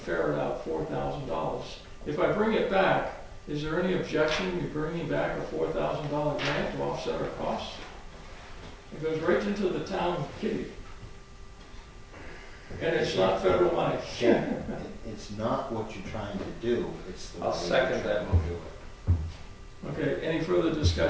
out $4,000. If I bring it back, is there any objection to bringing back a $4,000 grant to offset our costs? It goes right into the town kitty. And it's not federal money. Yeah, it's not what you're trying to do, it's the. I'll way second you're that trying to do it. Okay, any further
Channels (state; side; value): identical; both; correlation 1.00